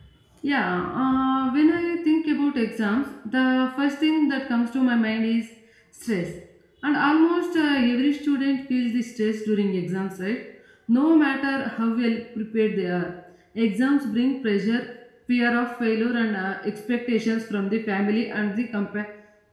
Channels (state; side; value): identical; both; correlation 1.00